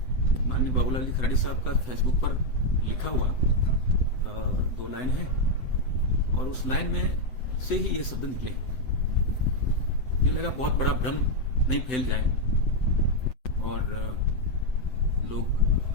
माननीय बाबूलाल जी खराड़ी साहब का फेसबुक पर लिखा हुआ 2 लाइन है, और उस लाइन में से ही ये शब्द निकले। ये लगा बहुत बड़ा भ्रम नहीं फैल जाए और लोग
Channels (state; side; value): late; right; 7.9 ms